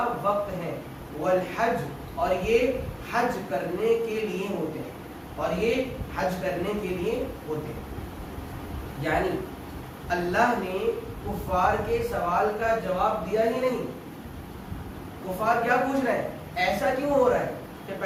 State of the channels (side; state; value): both; identical; correlation 1.00